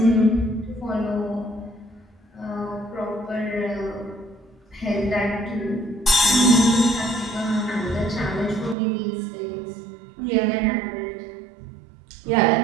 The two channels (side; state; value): left; drops out; at 8.8 s